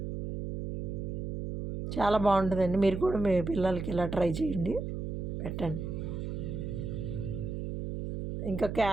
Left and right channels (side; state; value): right; noise; hum, 5 dB below the sound